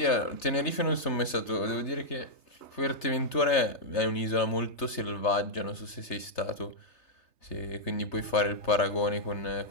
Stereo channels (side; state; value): right; late; 3.3 ms